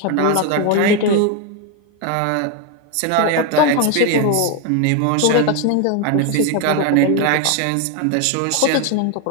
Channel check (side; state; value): both; different; correlation 0.01